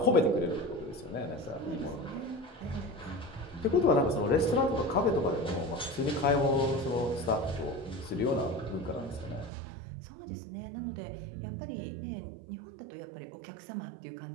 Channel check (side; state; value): left; drops out; at 9.5 s